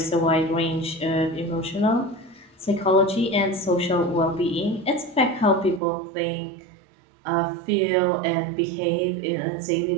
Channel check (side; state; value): left; drops out; at 5.8 s